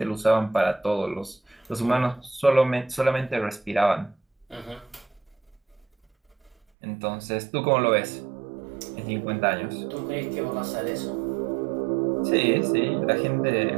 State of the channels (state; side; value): drops out; left; at 6.6 s